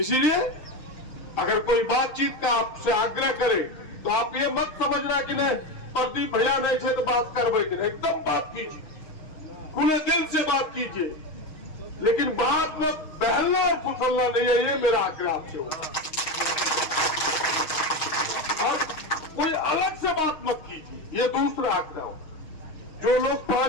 अगर कोई बातचीत का आपसे आग्रह करे तो आप ये मत समझना कि नहीं प्रदीप भैया नहीं थे तो बात कर बैठे। एकदम बात कीजिए, खुले दिल से बात कीजिए, लेकिन बात में बहलना और फुसलना नहीं है, ये मेरा आग्रह आपसे होगा। और कोई अलग से बात मत कीजिए, ये दूसरा आग्रह हो। जो लोग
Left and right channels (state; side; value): late; right; 6.4 ms